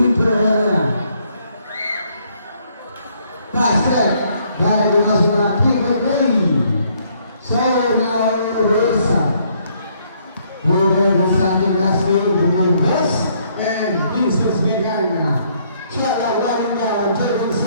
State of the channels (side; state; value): both; inverted; correlation -0.68